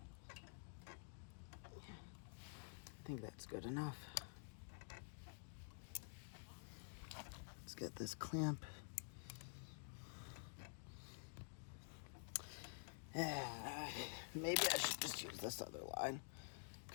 I think that's good enough. Let's get this clamp. Maybe I should just use this other line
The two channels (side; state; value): right; silent; digital silence